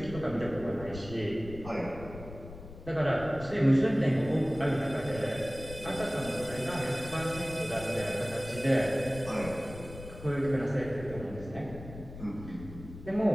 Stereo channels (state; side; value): noise; left; rumble, 14 dB below the sound